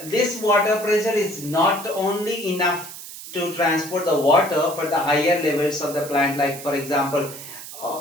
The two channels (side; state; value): right; noise; hiss, 13 dB below the sound